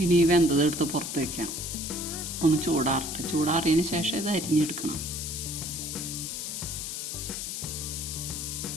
ഇനി ഈ വെന്തതെടുത്ത് പുറത്ത് വയ്ക്കാം. ഒന്ന് ചൂടാറട്ടെ. ചൂടാറിയതിന് ശേഷം ഇത് അരിഞ്ഞെടുക്കണം.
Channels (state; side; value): noise; left; hiss, 5 dB below the sound